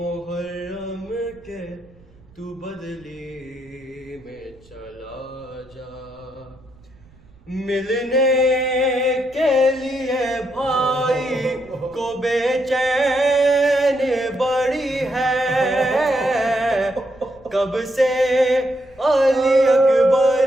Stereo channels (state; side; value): noise; right; rumble, 27 dB below the sound